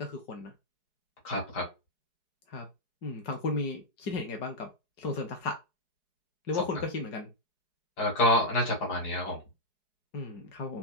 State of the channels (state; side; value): late; right; 4.7 ms